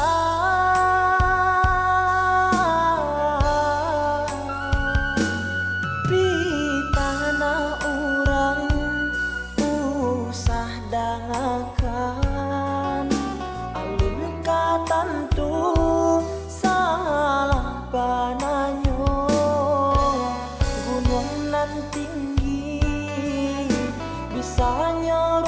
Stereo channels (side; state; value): both; identical; correlation 1.00